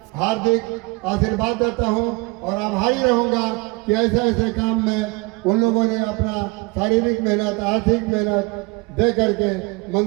हार्दिक आशीर्वाद देता हूं और आभारी रहूंगा कि ऐसे काम में उन लोगों ने अपना शारीरिक मेहनत, आर्थिक मेहनत दे करके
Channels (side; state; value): left; quieter; 26.3 dB